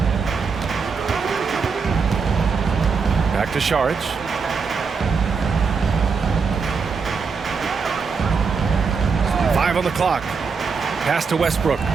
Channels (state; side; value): quieter; left; 5.3 dB